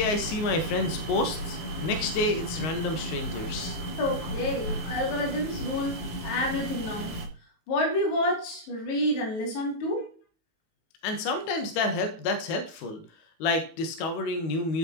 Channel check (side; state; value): right; late; 19 ms